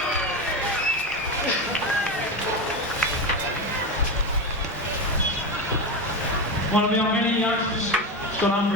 One of our many youngsters, Scott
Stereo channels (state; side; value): normal; both; correlation 0.18